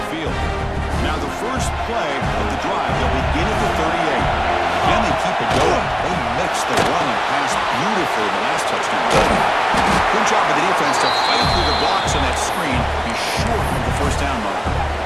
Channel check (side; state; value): both; identical; correlation 1.00